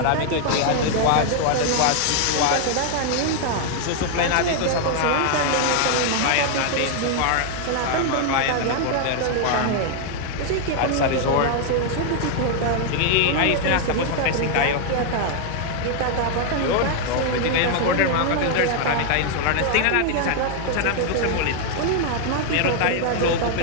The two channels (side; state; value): both; different; correlation 0.00